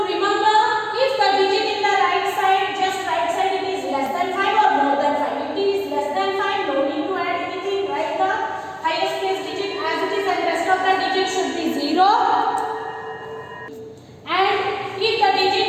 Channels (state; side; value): identical; both; correlation 1.00